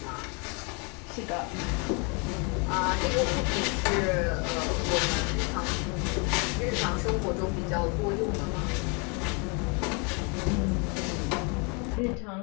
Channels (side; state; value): right; quieter; 33.8 dB